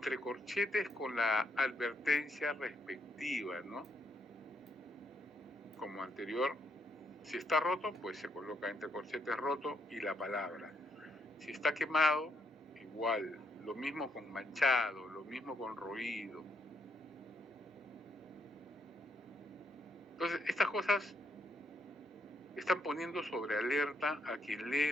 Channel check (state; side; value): normal; both; correlation 0.77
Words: corchetes con la advertencia respectiva, ¿no? Como anterior, si está roto, pues se coloca entre corchetes roto y la palabra. Si está quemado, igual, lo mismo con manchado, lo mismo con roído. Entonces, estas cosas están poniendo sobre alerta a quien lee